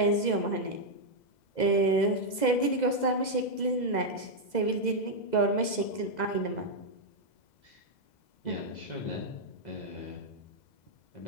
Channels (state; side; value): late; right; 2.0 ms